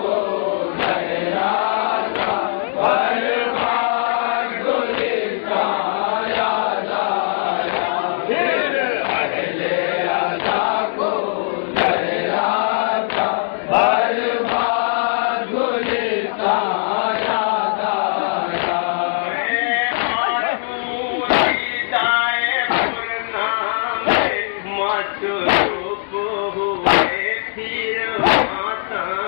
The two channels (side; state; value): right; silent; 66 dB below the other